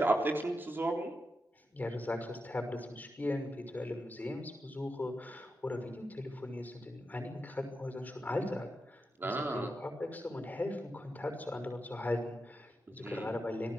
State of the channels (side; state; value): both; normal; correlation 0.87